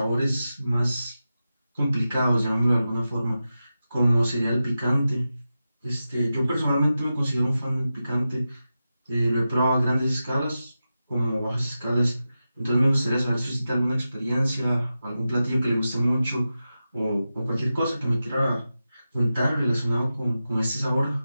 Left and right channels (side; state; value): both; inverted; correlation -0.92